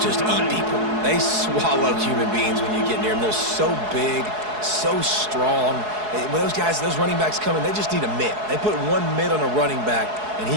eat people. They swallow human beings when you get near them. They're so big, so strong. When those guys, those running backs come in, they just need a mitt. They put one mitt on a running back, and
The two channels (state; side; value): late; left; 4.7 ms